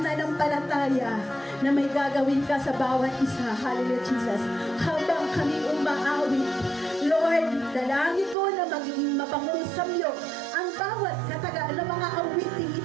nanampalataya na may gagawin ka sa bawat isa, hallelujah Jesus, habang kami umaawit. Lord, dalangin ko na magiging mapangong samyo ang bawat katagaan ng mga awiting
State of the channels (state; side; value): drops out; left; at 8.3 s